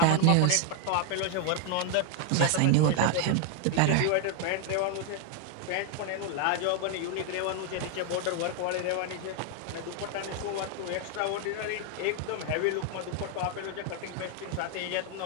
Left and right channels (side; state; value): both; different; correlation 0.00